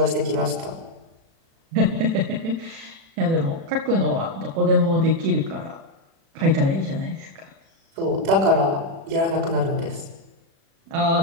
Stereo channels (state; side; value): late; left; 36 ms